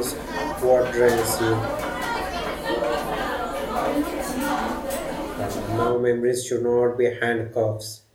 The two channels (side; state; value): both; identical; correlation 1.00